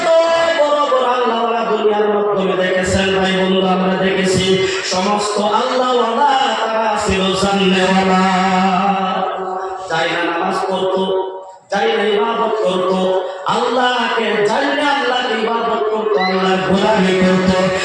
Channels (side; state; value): both; identical; correlation 1.00